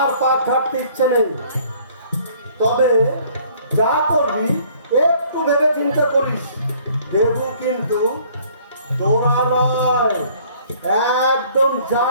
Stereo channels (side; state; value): both; inverted; correlation -0.57